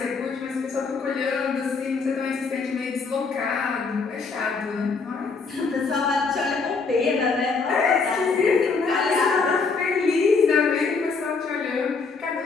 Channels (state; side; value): quieter; right; 4.6 dB